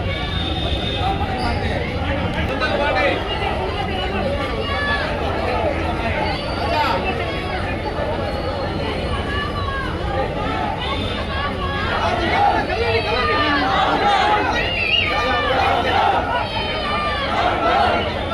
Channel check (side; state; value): both; identical; correlation 1.00